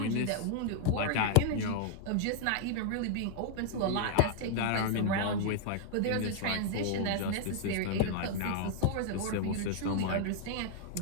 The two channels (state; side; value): different; both; correlation 0.00